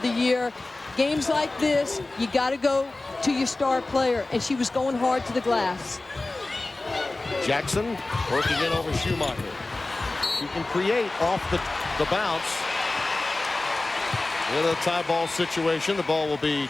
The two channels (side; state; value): right; quieter; 3.0 dB